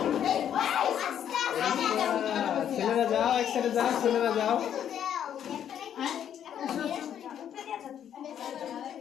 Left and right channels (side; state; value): right; quieter; 9.6 dB